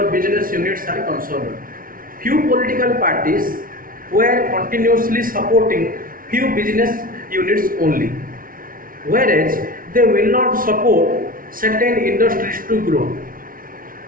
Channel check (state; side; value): late; left; 0.41 ms